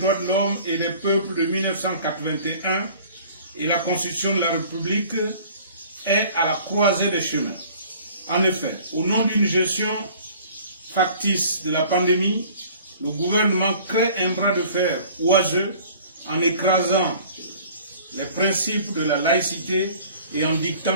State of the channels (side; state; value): both; inverted; correlation -0.49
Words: de l'homme et des peuples de 1981 et la Constitution de la République est à la croisée des chemins. En effet, au nom d'une gestion factice de la pandémie, le gouvernement crée un bras de fer oiseux en écrasant les principes de la laïcité et en